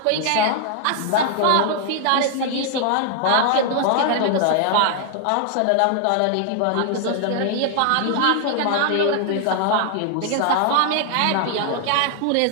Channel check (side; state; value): both; different; correlation 0.00